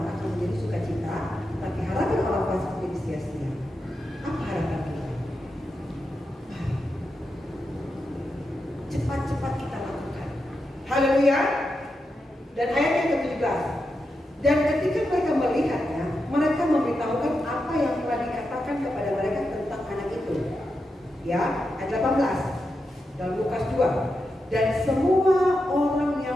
akan menjadi sukacita, tapi harapan orang fasik menjadi sia-sia. Apa harapan kita? Cepat-cepat kita lakukan. Haleluya. Dan ayat yang ke-17. Dan ketika mereka melihatnya, mereka memberitahukan apa yang telah dikatakan kepada mereka tentang anak itu. Ya, ayat 18 dalam Lukas 2. Dan semua orang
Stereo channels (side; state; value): both; normal; correlation 0.87